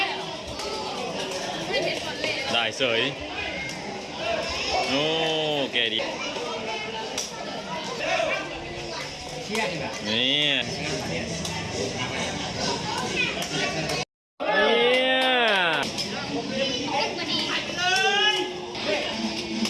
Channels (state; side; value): identical; both; correlation 1.00